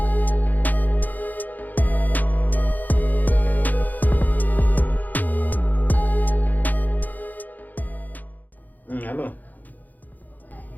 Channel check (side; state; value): right; late; 0.083 ms